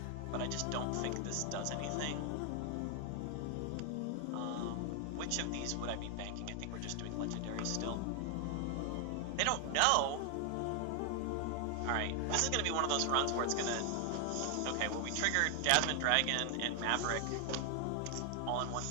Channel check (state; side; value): different; both; correlation 0.00